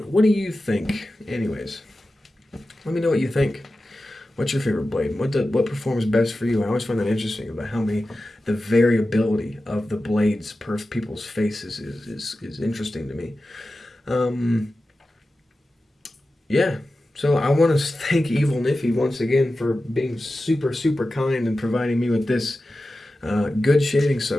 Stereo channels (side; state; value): both; normal; correlation 0.93